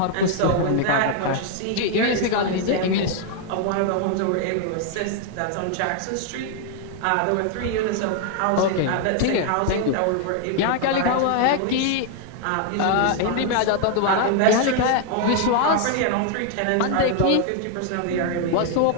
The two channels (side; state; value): both; different; correlation 0.00